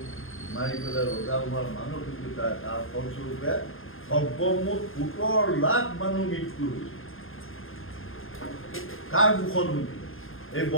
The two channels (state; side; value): late; right; 0.60 ms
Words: মাৰি পেলাই ৰজা হোৱাৰ মানসিকতা, তাৰ ফলস্বৰূপে সৰ্বমুঠ 17 লাখ মানুহ মৃত্যু হৈছে। কাৰ দুখত হৈছিল? এই